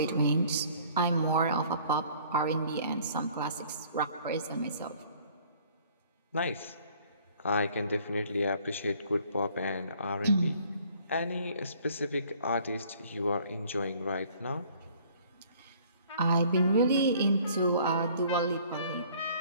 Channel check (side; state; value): both; inverted; correlation -0.56